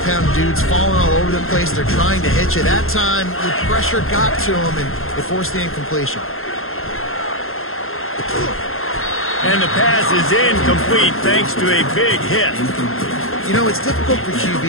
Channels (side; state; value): right; late; 0.61 ms